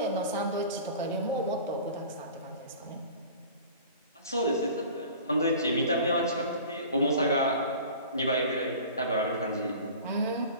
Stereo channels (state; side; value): inverted; both; correlation -0.41